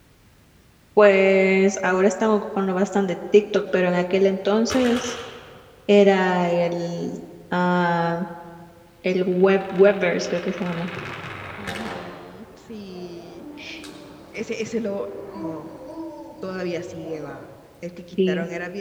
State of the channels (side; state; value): both; identical; correlation 1.00